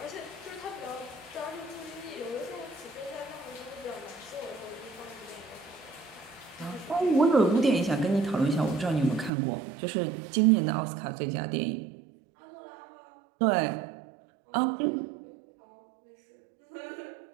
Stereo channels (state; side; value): drops out; left; at 9.3 s